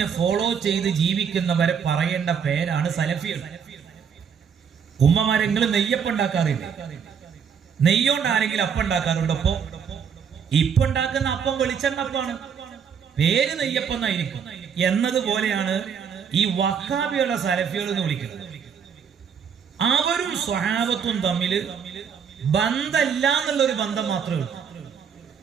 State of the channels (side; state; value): left; quieter; 7.1 dB